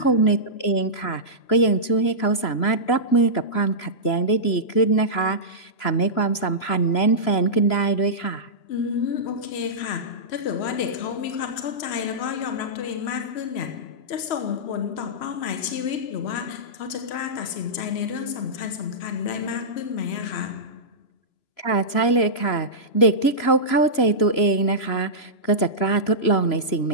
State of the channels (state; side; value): late; right; 3.0 ms